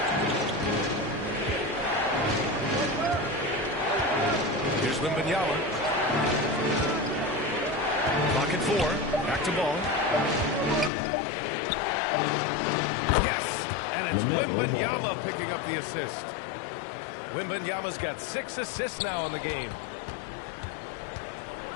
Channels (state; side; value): drops out; right; at 10.9 s